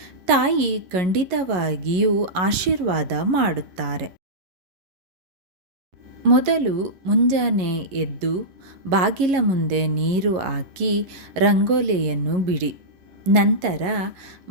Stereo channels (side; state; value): left; late; 11 ms